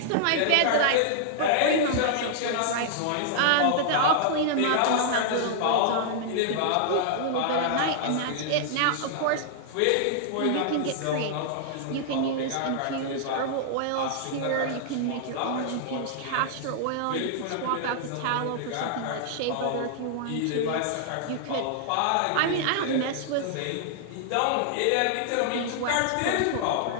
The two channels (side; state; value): both; different; correlation -0.01